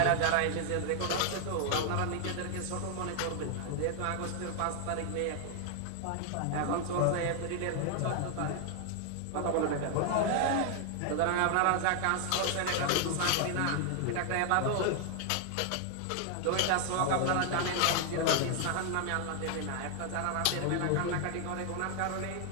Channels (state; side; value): different; both; correlation 0.00